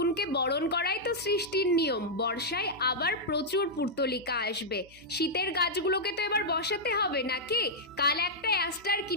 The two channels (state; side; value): noise; right; hum, 24 dB below the sound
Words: বরণ করাই তো সৃষ্টির নিয়ম। বর্ষায় আবার প্রচুর পুর্তলিকা আসবে। শীতের গাছগুলোকে তো এবার বসাতে হবে নাকি? কাল একটা অ্যাস্টার